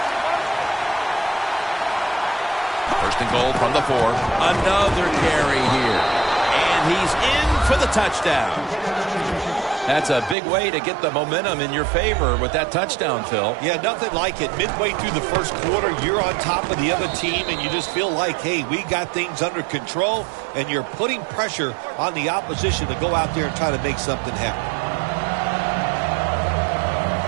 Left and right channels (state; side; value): drops out; left; at 10.4 s